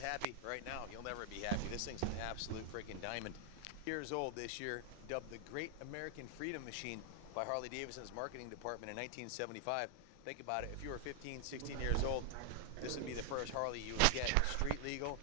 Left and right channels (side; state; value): both; different; correlation 0.00